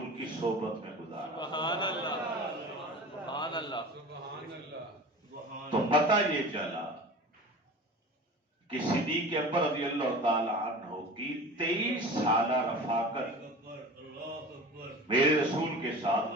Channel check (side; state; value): both; normal; correlation 0.36